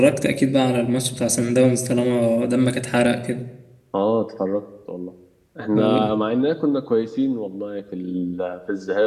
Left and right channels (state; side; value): identical; both; correlation 1.00